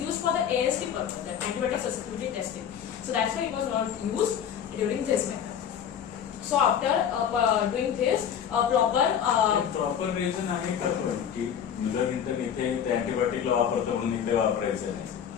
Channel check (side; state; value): right; quieter; 8.6 dB